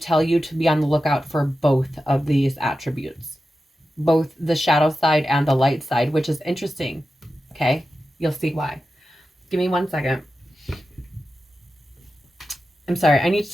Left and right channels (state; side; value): normal; both; correlation 0.92